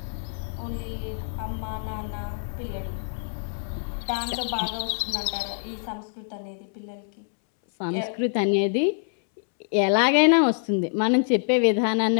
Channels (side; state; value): right; silent; 61 dB below the other